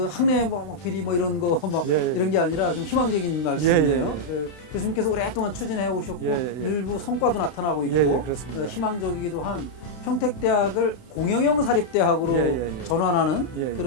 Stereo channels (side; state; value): right; late; 32 ms